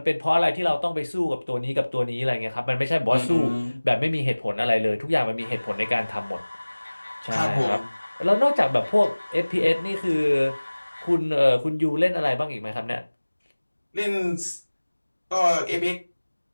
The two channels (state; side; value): inverted; both; correlation -1.00